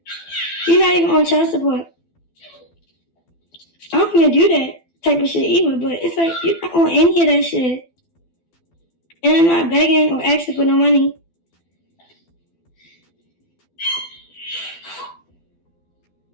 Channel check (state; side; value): late; right; 12 ms